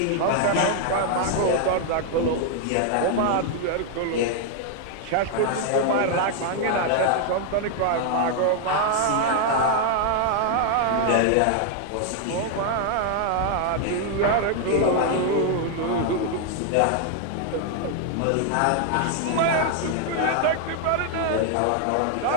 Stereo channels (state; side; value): different; both; correlation 0.00